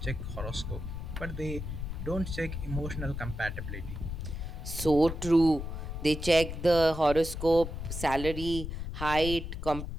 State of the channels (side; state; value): left; noise; rumble, 6 dB below the sound